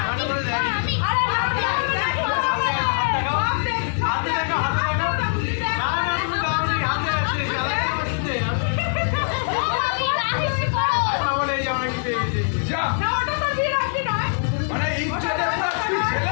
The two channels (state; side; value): silent; right; 64 dB below the other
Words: হাতে করে দেখ আরে হাতে দেখো না না তুমি দাওনি হাতে আছে চালাতে বসতে আই পাবো এই আমরা কি পেয়েছি যা না ওটা তো বিয়ে রাখবি নয় আরে এই ছেলে তুই ছেলে